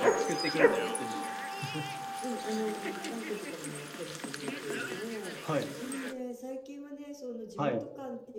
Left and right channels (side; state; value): both; identical; correlation 1.00